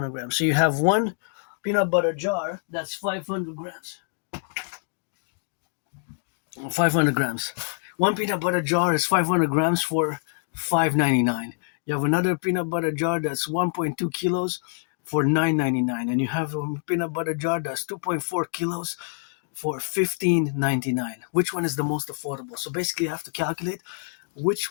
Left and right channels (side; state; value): right; silent; digital silence